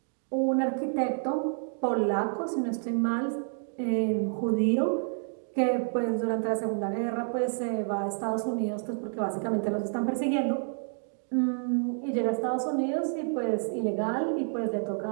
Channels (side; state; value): left; silent; 58 dB below the other